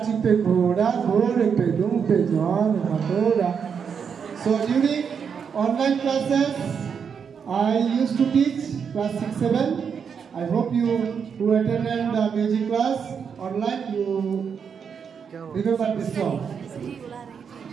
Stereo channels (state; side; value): quieter; left; 6.8 dB